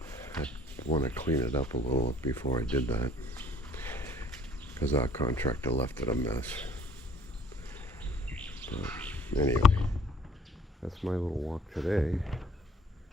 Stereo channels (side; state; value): both; normal; correlation 0.56